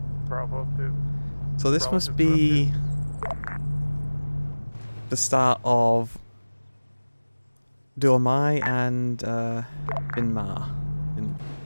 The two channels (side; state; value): both; inverted; correlation -1.00